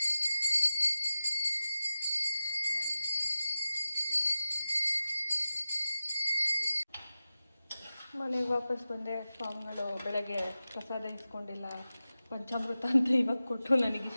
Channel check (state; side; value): inverted; both; correlation -0.93